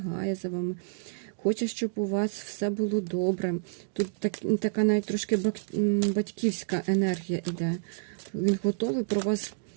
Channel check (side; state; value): left; silent; digital silence